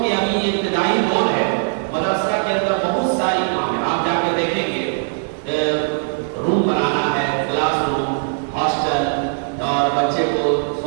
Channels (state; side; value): silent; left; 66 dB below the other